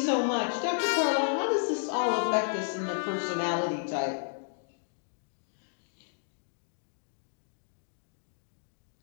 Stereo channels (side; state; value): right; silent; digital silence